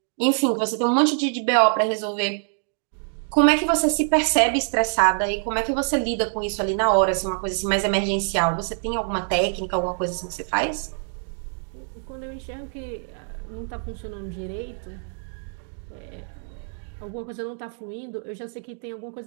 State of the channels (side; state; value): left; silent; 62 dB below the other